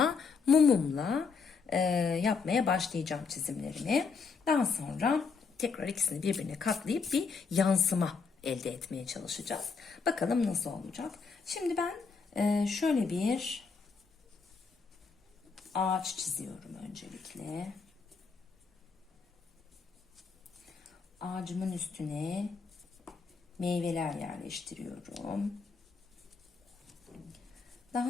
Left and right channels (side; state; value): right; quieter; 5.1 dB